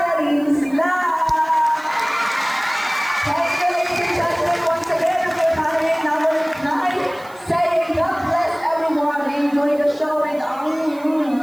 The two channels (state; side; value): noise; right; hiss, 25 dB below the sound